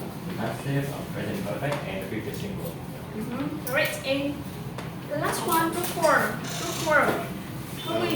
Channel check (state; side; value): identical; both; correlation 1.00